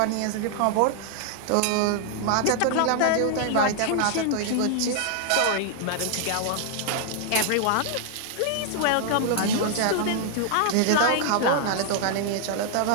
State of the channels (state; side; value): different; both; correlation 0.00